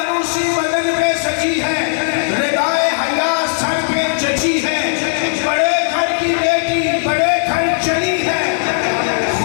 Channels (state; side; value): silent; right; digital silence